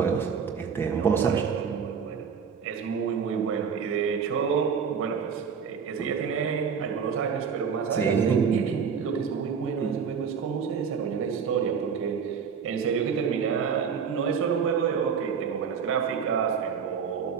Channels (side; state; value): left; quieter; 6.5 dB